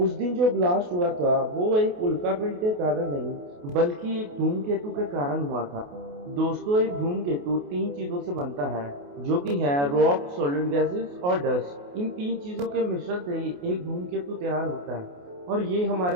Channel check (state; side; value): late; left; 28 ms